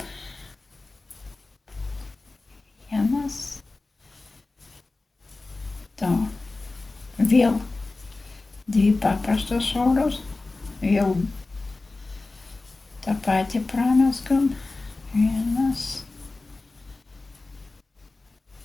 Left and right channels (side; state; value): right; quieter; 3.3 dB